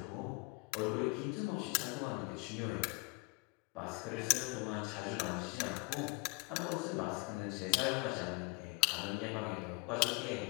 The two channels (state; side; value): quieter; right; 28.6 dB